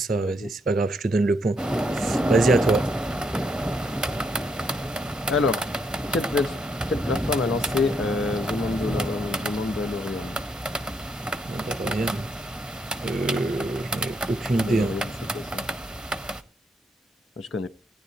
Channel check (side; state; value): both; normal; correlation 0.75